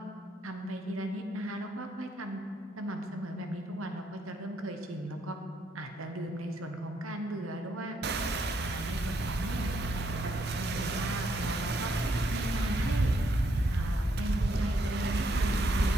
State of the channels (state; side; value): normal; both; correlation 0.74